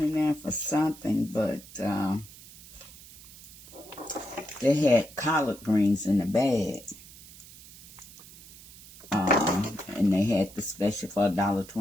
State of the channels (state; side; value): noise; right; hiss, 19 dB below the sound